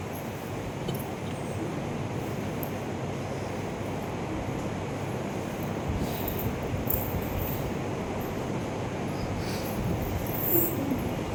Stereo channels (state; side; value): identical; both; correlation 1.00